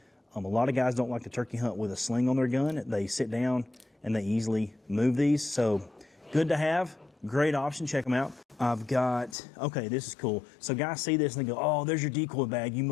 A lot of guys don't like to turkey hunt with a sling on their gun. They sit down and they easily move these. So good to have, great option, check them out. I've got, okay, this is cool. So guys see this and they go, oh, there's your decoy bag. You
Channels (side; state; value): right; drops out; at 9.3 s